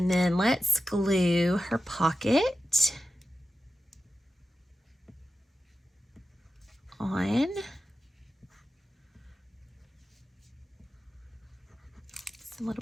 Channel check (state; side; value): normal; both; correlation 0.92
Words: then let's glue her pocket on. Just a